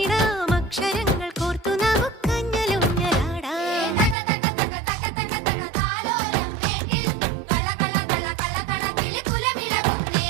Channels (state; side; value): drops out; left; at 4.2 s